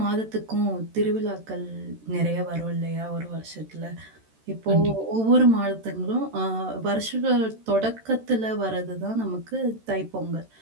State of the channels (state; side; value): late; left; 13 ms